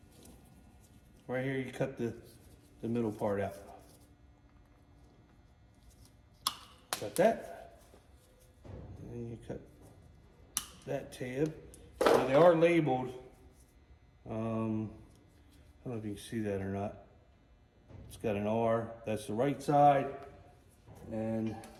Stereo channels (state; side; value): identical; both; correlation 1.00